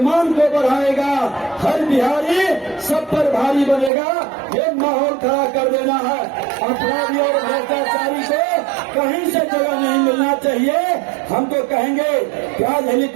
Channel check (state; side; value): drops out; left; at 3.9 s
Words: को बढ़ाएगा। हर बिहारी सब पर भारी बनेगा। ये माहौल खड़ा कर देना है। अपराधी और भ्रष्टाचारी को कहीं से जगह नहीं मिलना चाहिए। हम तो कहेंगे कि आज